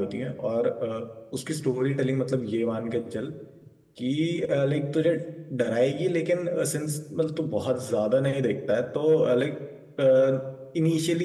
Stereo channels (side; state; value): both; identical; correlation 1.00